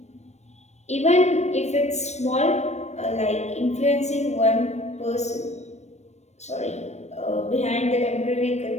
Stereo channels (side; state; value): right; late; 0.32 ms